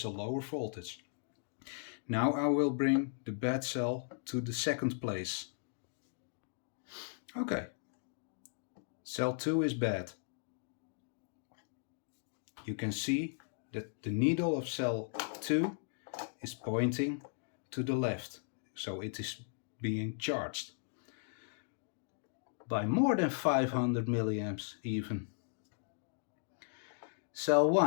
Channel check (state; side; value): silent; right; digital silence